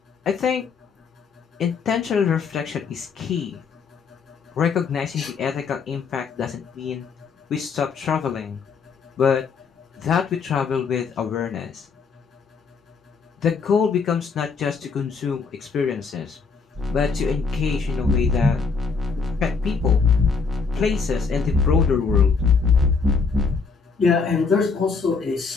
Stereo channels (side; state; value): right; quieter; 5.1 dB